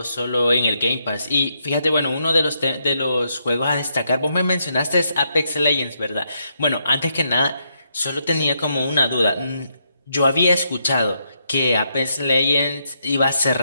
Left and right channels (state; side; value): inverted; both; correlation -0.78